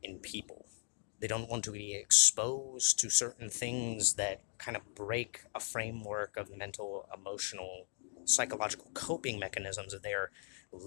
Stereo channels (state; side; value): silent; right; 53 dB below the other